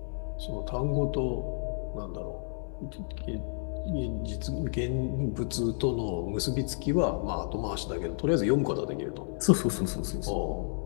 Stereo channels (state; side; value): silent; right; 57 dB below the other